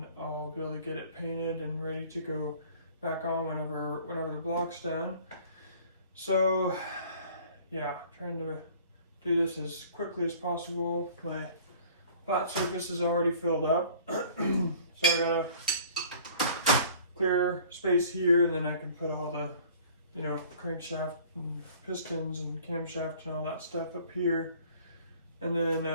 I'll be able to get it painted and ready to go back on whenever the block's done. So yeah, trying to do this as quickly as possible. My flat surface is already filled up, so I gotta clear space here, and then I can put all the, you know, crankshaft and pistons and camshaft and all that stuff up here. And then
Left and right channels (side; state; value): both; inverted; correlation -0.50